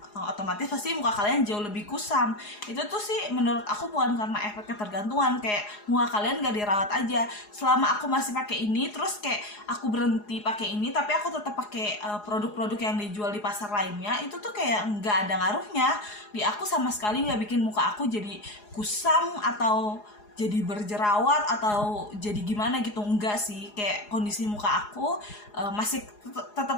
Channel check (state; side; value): late; right; 4.8 ms